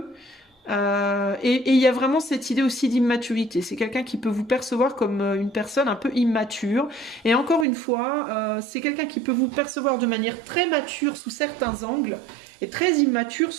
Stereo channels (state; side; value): drops out; left; at 7.7 s